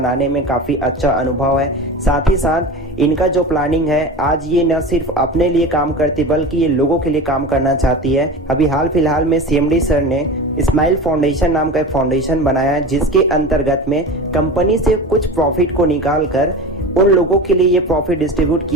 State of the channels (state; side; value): normal; both; correlation 0.30